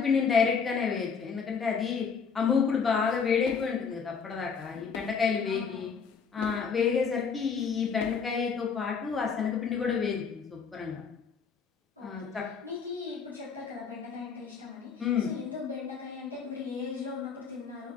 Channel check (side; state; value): right; quieter; 6.0 dB